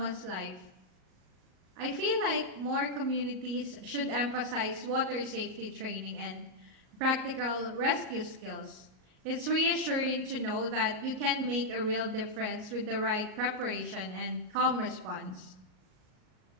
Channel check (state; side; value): late; left; 37 ms